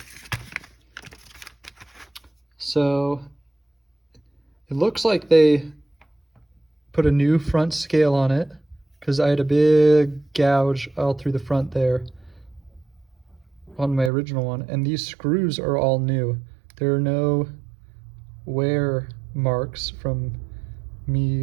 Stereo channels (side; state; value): left; drops out; at 14.1 s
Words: So it looks like they put a new front scale on it because I had a big gouge all through the front there on my original one, and these screws are all new. There are no wear marks from